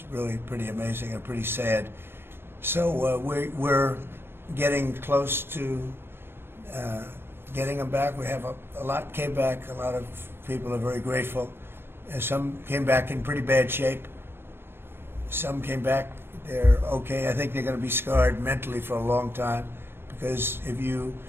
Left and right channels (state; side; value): late; left; 0.11 ms